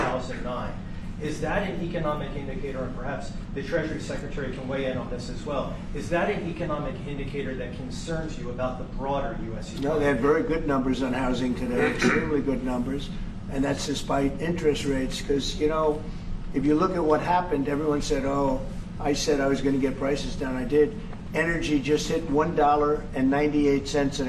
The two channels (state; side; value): identical; both; correlation 1.00